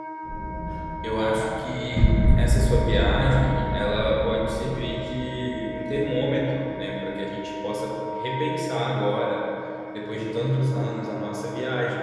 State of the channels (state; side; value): identical; both; correlation 1.00